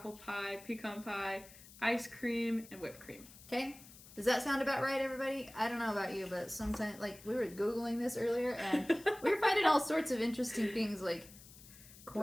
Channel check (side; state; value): left; noise; hiss, 19 dB below the sound